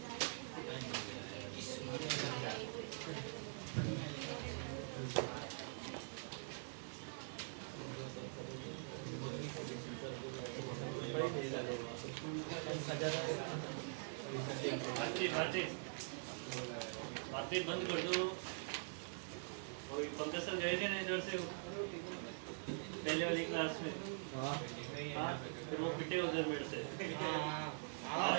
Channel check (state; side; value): silent; left; digital silence